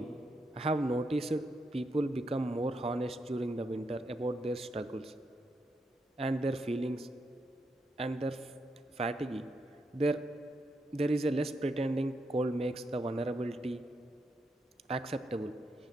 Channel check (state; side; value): normal; both; correlation 0.81